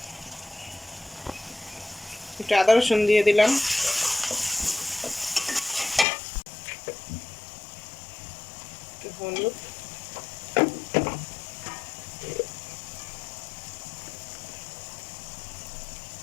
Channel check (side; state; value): right; drops out; at 6.1 s